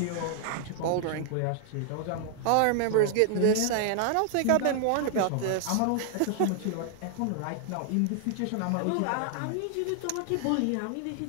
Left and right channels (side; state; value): both; different; correlation 0.00